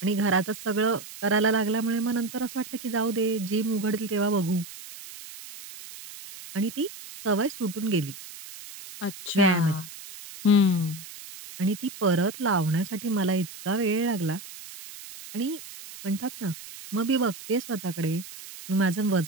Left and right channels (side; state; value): right; noise; hiss, 14 dB below the sound